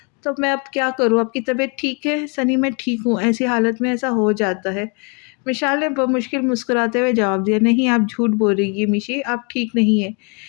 तो मैं अब क्या करूँ? आपकी तबीयत ठीक है? सनी, मैं ठीक हूँ, ऐसी हालत में ऐसा हो जाता है। विशाल ने बमुश्किल मुस्कुराते हुए जवाब दिया, नहीं आप झूठ बोल रही है मिशी, आप ठीक नहीं है।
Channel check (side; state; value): right; quieter; 35.0 dB